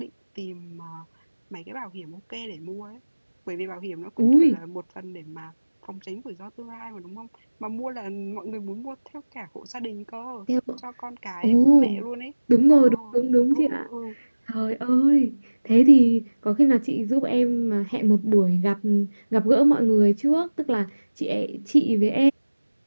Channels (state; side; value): inverted; both; correlation -1.00